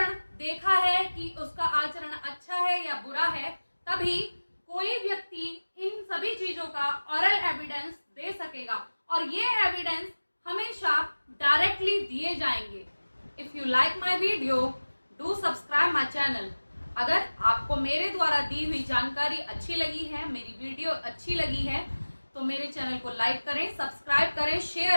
देखा है कि उसका आचरण अच्छा है या बुरा है, तभी कोई व्यक्ति इन सभी चीजों का ऑरल एविडेंस दे सकेगा और ये एविडेंस हमेशा डायरेक्टली दिए जाएंगे। If you like my video, do subscribe my channel. अगर आपको मेरे द्वारा दी हुई जानकारी अच्छी लगी है, मेरी वीडियो अच्छी लगी है, तो मेरे चैनल को लाइक करें, सब्सक्राइब करें,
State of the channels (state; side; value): inverted; both; correlation -1.00